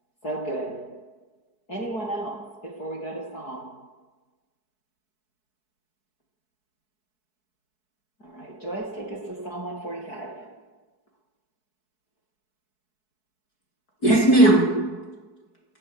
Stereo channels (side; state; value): right; late; 4.7 ms